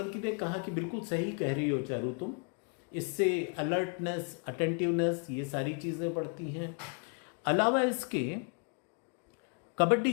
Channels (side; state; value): right; quieter; 38.5 dB